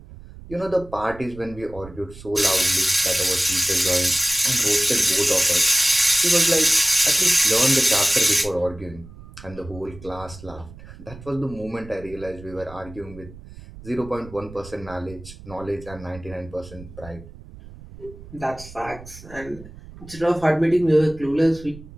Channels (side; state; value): right; noise; rumble, 17 dB below the sound